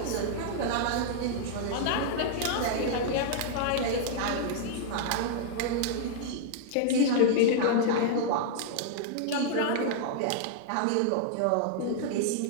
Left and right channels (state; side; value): different; both; correlation -0.01